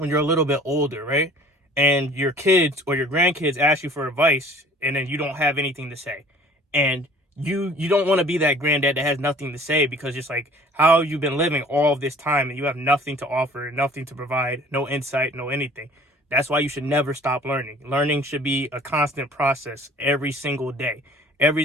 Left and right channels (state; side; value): normal; both; correlation 0.50